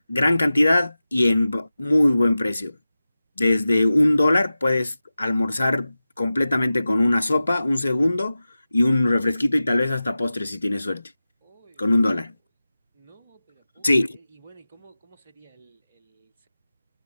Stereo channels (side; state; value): both; inverted; correlation -0.95